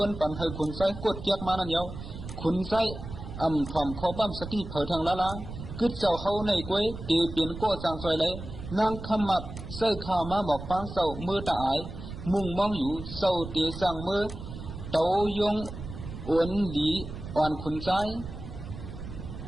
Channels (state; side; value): noise; right; rumble, 10 dB below the sound